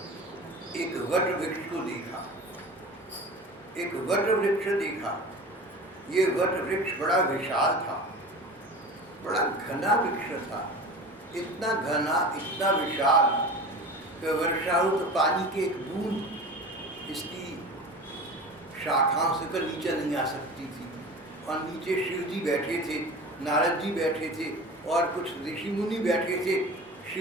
एक वट वृक्ष को देखा। एक वट वृक्ष देखा। ये वट वृक्ष बड़ा विशाल था, बड़ा घना वृक्ष था। इतना घना, इतना विशाल कि वर्षा हो तो पानी की एक बूंद इसकी शाखाओं से कर नीचे नहीं आ सकती थी। और नीचे शिव जी बैठे थे, नारद जी बैठे थे और कुछ ऋषि मुनि बैठे थे।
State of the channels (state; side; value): normal; both; correlation 0.35